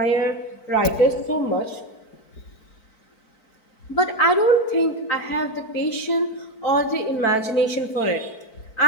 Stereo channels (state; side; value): late; right; 4.5 ms